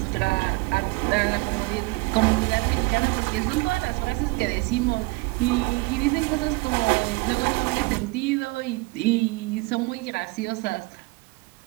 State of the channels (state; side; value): quieter; left; 25.6 dB